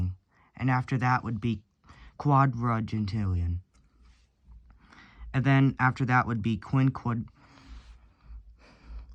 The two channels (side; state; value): both; identical; correlation 1.00